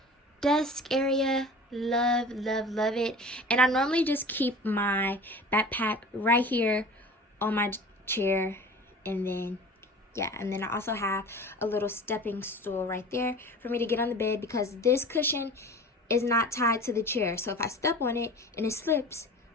desk area. Love it. And I normally just keep my backpack right here on my chair, and then yeah, and then I also have a little stepping stool right there for me to get on the bed, because this cushion is not tied to the chair, so if I step on it and it slips,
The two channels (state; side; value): normal; both; correlation 0.39